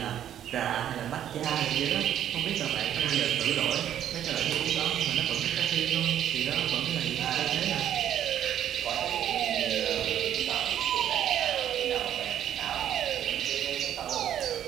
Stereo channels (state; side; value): quieter; left; 10.6 dB